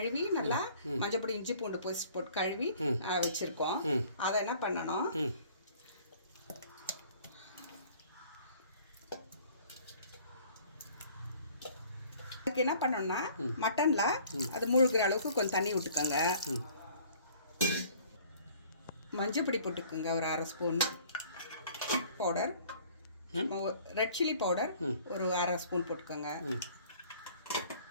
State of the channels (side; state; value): both; inverted; correlation -0.53